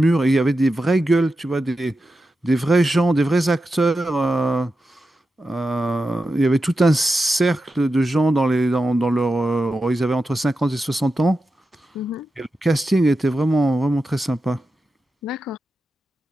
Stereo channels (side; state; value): both; normal; correlation 0.90